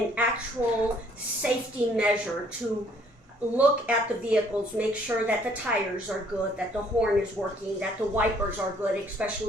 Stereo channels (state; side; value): normal; both; correlation 0.62